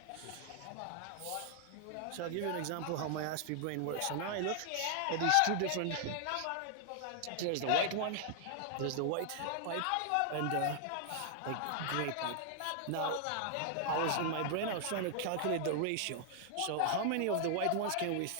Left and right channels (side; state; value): both; different; correlation 0.00